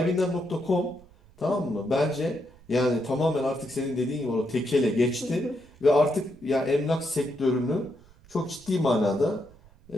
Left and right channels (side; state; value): right; noise; rumble, 26 dB below the sound